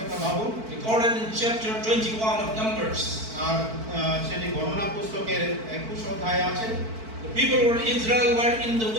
ভাবুন, Recorded in chapter 21 of Numbers. আর সেটি গণনা পুস্তকের 21 অধ্যায়ে আছে। The people of Israel were in the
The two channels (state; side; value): late; left; 4.5 ms